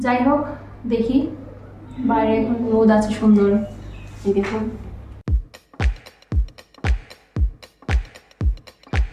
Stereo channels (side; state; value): both; identical; correlation 1.00